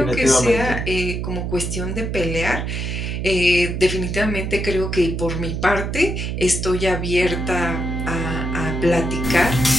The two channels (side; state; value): right; noise; hum, 3 dB below the sound